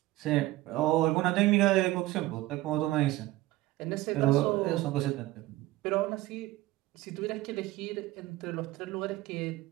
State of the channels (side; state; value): left; quieter; 17.7 dB